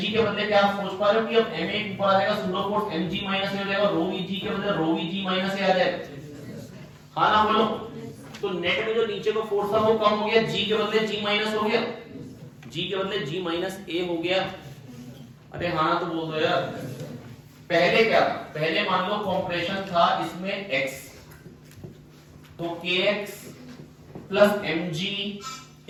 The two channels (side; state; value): both; identical; correlation 1.00